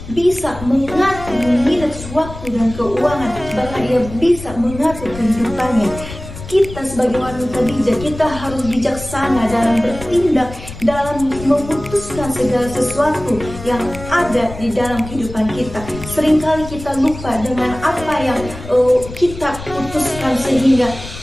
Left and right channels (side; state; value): left; noise; rumble, 12 dB below the sound